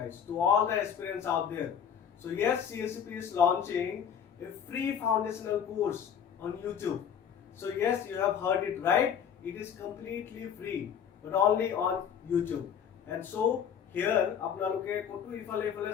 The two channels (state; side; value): quieter; right; 8.2 dB